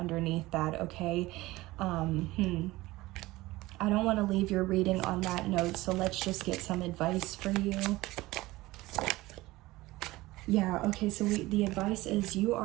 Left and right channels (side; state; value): left; quieter; 19.0 dB